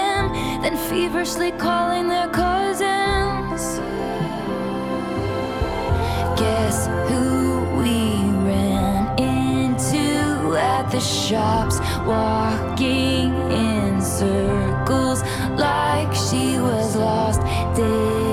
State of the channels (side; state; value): both; identical; correlation 1.00